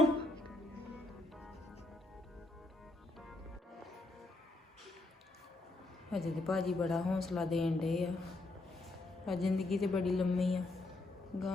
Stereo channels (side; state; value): both; normal; correlation 0.78